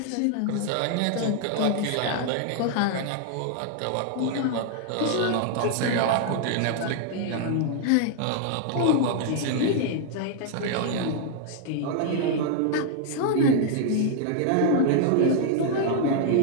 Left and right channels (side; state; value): both; different; correlation 0.00